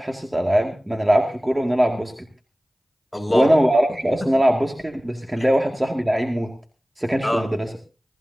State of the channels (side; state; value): both; normal; correlation 0.98